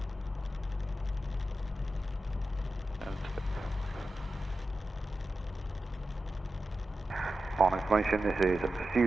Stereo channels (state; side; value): normal; both; correlation 0.92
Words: On information, this is